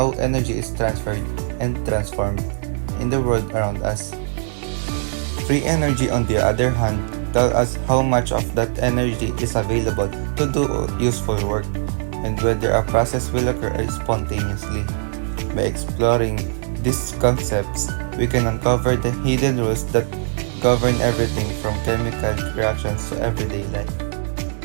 energy is transferred and transformed in the world around us. Free energy, on the other hand, tells us how much of that energy is available to do useful work and whether a process will occur spontaneously. By exploring these concepts, we can uncover the hidden rules that govern everything from chemical reactions to everyday life.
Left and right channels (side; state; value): left; silent; digital silence